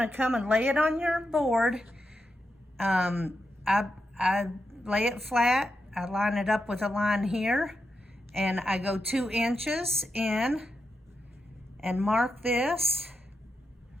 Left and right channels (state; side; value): normal; both; correlation 0.86